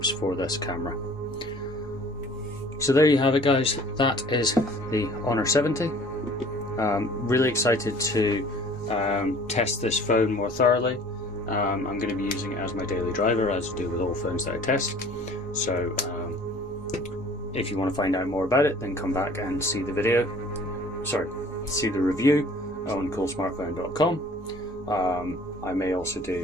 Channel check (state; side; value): normal; both; correlation 0.50